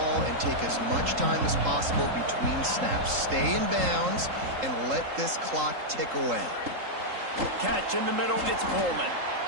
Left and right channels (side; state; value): left; late; 3.8 ms